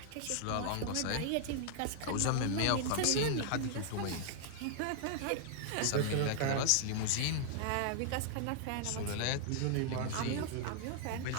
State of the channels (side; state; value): both; different; correlation -0.01